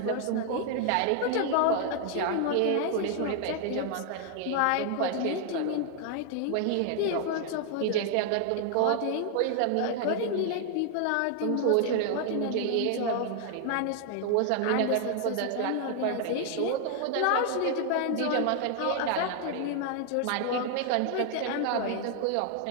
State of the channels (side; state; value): both; different; correlation 0.00